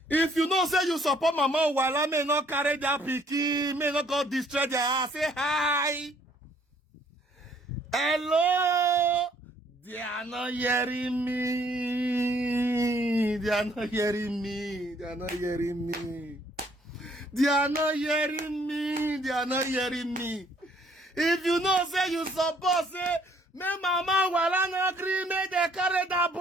If you know say you support Mama Uwaila, may not carry that picky, may not go destroy their house, say hi. Hello. They are not hearing me. They are not hearing me. They are not hearing me. They are not hearing me. They are not hearing me. If you know, say you support, say, me Mama Uwaila no agree, me they carry that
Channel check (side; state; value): both; normal; correlation 0.63